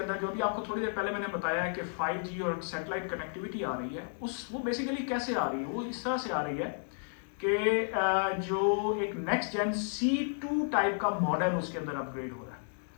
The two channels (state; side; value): silent; right; 56 dB below the other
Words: جو بھی آپ کو تھوڑی دیر پہلے میں نے بتایا ہے کہ 5G اور سیٹلائٹ کنیکٹیوٹی آ رہی ہے, وہ بیسیکلی کیسے آ رہی ہے, وہ اس طرح سے آ رہی ہے کہ جو ایک نیکسٹ جن C2 ٹائپ کا ماڈل اس کے اندر اپ گریڈ ہو رہا ہے.